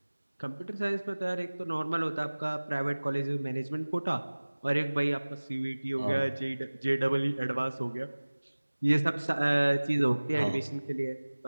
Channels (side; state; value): both; inverted; correlation -1.00